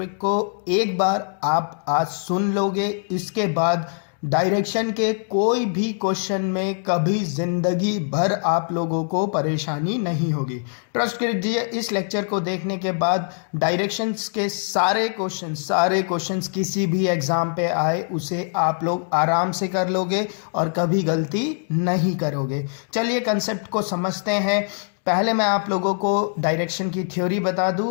को एक बार आप आज सुन लोगे, इसके बाद डायरेक्शन के कोई भी क्वेश्चन में कभी जिंदगी भर आप लोगों को परेशानी नहीं होगी। ट्रस्ट कीजिए, इस लेक्चर को देखने के बाद डायरेक्शंस के सारे क्वेश्चंस किसी भी एग्जाम पे आए उसे आप लोग आराम से कर लोगे और कभी गलती नहीं करोगे। चलिए कंसेप्ट को समझते हैं। पहले मैं आप लोगों को डायरेक्शन की थ्योरी बता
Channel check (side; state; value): right; silent; 59 dB below the other